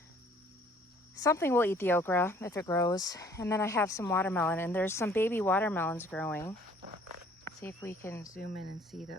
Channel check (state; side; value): normal; both; correlation 0.57